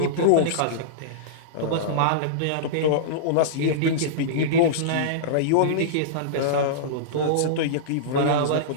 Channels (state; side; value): different; both; correlation -0.03